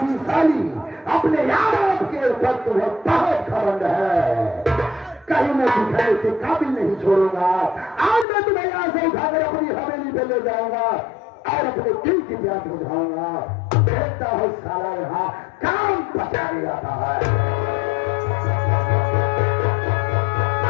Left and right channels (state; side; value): drops out; right; at 8.2 s